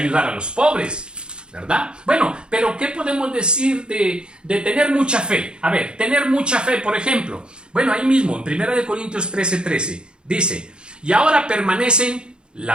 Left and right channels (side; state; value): left; late; 0.051 ms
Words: a los pobres, ¿verdad? Bueno, pero ¿qué podemos decir de tener mucha fe? A ver, tener mucha fe, por ejemplo. Bueno, ahí mismo, en 1 Corintios 13:13, dice, y ahora permanecen